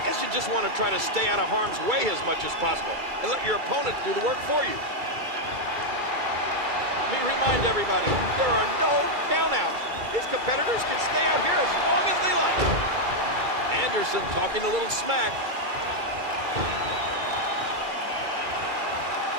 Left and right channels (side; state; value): left; late; 2.3 ms